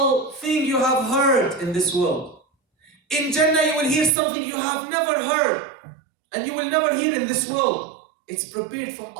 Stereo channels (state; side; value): drops out; left; at 4.1 s